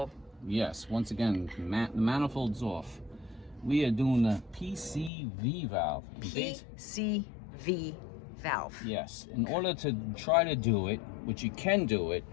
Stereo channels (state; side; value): drops out; right; at 5.1 s